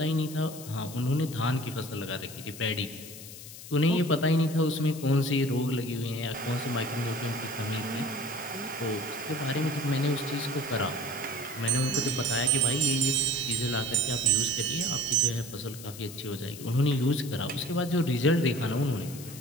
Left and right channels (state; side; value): noise; left; hiss, 14 dB below the sound